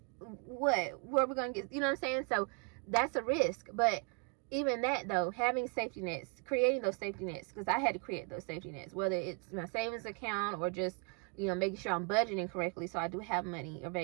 where are we going to get, you know what I'm saying? So that's a risk. But even that, though, having safety nets, creating those safety nets, because I had to create those safety nets, whether it's my savings account or just, making sure I'm budgeting correctly so I do have money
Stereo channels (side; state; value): left; quieter; 35.5 dB